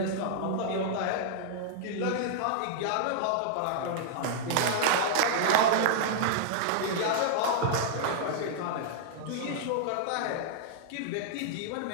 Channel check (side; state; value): both; different; correlation -0.01